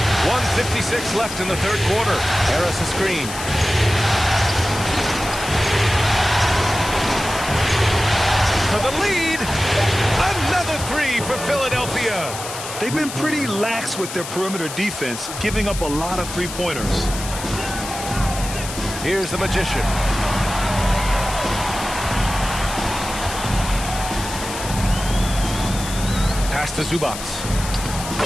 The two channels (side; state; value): left; noise; hiss, 9 dB below the sound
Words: 1:56 left in the third quarter. Harris a screen. For the lead. Another 3 for Philadelphia. They've been pretty lax with their perimeter defense, giving up a lot of 3-pointers. Here's the magician. Pass to Zubac.